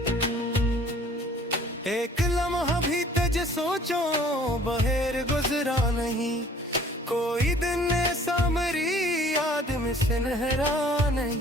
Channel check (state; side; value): normal; both; correlation 0.53